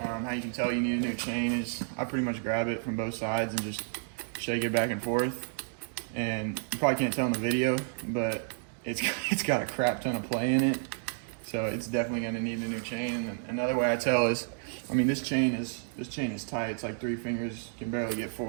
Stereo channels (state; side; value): silent; left; digital silence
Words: you can tell you need a new chain is I pretty much grab it from both sides and just shake it back and forth. And you probably can't tell in the video, but it's got a crap ton of play in it. So it's definitely going to need a new chain. And then another way I tell is, I mean, this chain is tight. It's like 3 fingers, can barely get